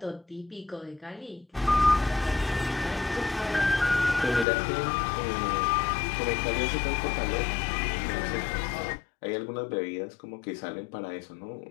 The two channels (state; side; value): drops out; right; at 4.5 s